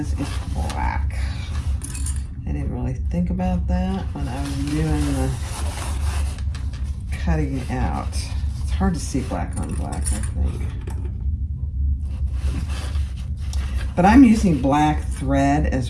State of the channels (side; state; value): both; identical; correlation 1.00